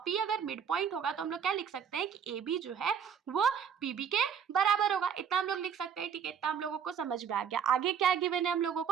पी अगर मिड पॉइंट होगा तो हम लोग क्या लिख सकते हैं कि ए बी जो है वो पी बी के बराबर होगा। इतना हम लोग लिख सकते हैं, ठीक है। इतना हम लोगों को समझ में आ गया। आगे क्या गिवन है हम लोगों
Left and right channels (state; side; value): quieter; left; 7.6 dB